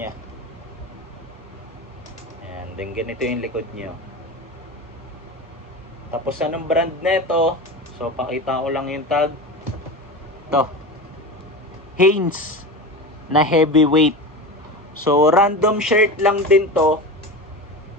And then ganito yung likod niya. Tapos anong brand nito? So pakita ko lang yung tag. Ito. Hanes na heavyweight. So random shirt lang din to.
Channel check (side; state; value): both; normal; correlation 0.26